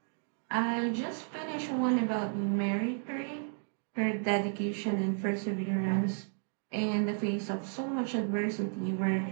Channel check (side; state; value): left; silent; 56 dB below the other